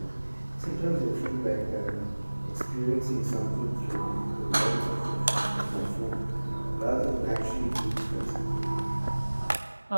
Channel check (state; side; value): inverted; both; correlation -1.00